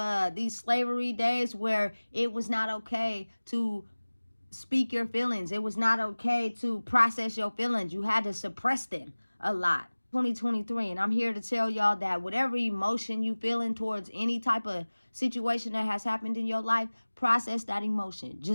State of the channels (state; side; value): inverted; both; correlation -1.00